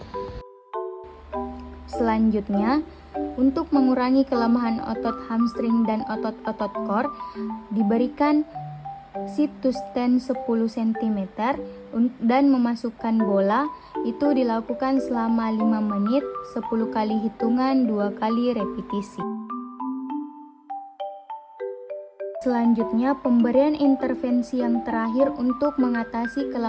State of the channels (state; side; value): identical; both; correlation 1.00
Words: Selanjutnya, untuk mengurangi kelemahan otot hamstring dan otot-otot core, diberikan sit to stand 10 cm dan memasukkan bola. Itu dilakukan selama 5 menit, 10 kali hitungan 2 kali repetisi. Selanjutnya, pemberian intervensi yang terakhir untuk mengatasi